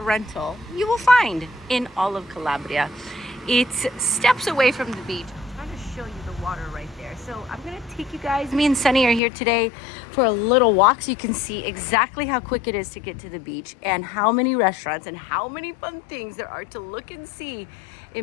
you will find in all of Calabria. It's steps away from the beach. I'm trying to show you the water right there. So I'm gonna take you guys, me and Sunny are here today for a little walk so you can see exactly how quick it is to get to the beach and how many restaurants and how many fun things there are to look and see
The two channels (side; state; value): right; drops out; at 9.2 s